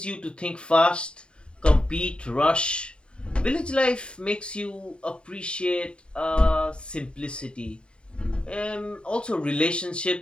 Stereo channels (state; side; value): late; right; 0.053 ms